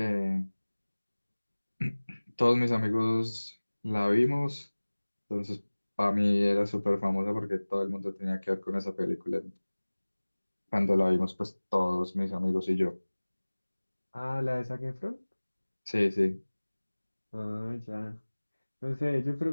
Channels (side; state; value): both; inverted; correlation -1.00